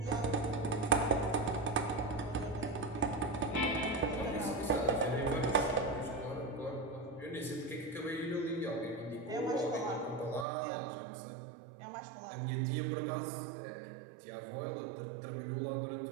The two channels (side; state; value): left; drops out; at 10.5 s